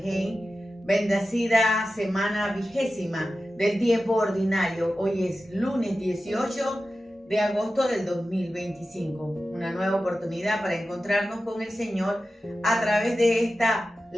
Bendecida semana 20ª del tiempo ordinario. Hoy es lunes 18 de agosto del 2025. Una nueva oportunidad para encontrarnos con el Señor a través de esta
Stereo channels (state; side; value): normal; both; correlation 0.93